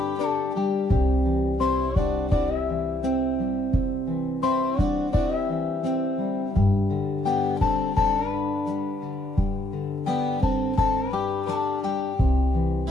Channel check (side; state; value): both; normal; correlation 0.72